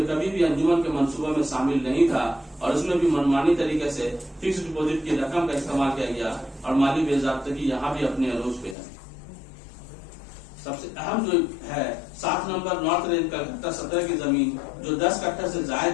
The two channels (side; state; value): right; drops out; at 8.8 s